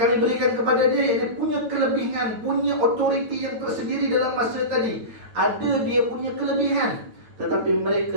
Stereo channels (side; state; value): left; late; 9.0 ms